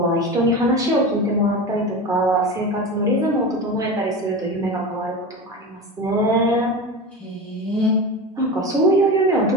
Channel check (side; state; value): both; normal; correlation 0.26